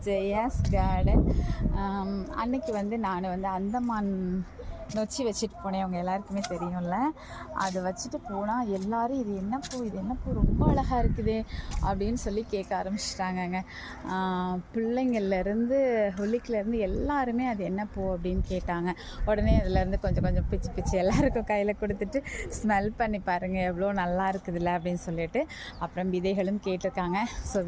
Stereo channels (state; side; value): identical; both; correlation 1.00